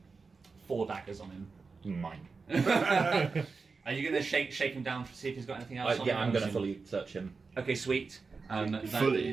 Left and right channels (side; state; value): left; quieter; 4.5 dB